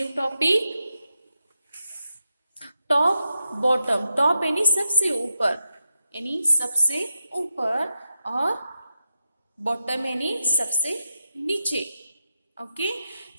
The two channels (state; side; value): inverted; both; correlation -0.87